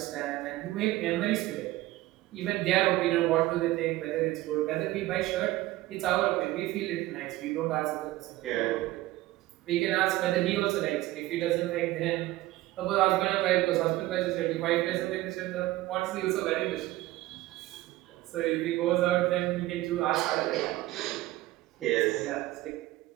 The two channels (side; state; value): left; quieter; 17.1 dB